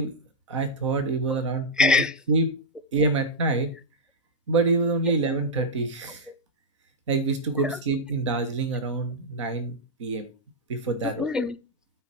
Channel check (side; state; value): both; normal; correlation -0.04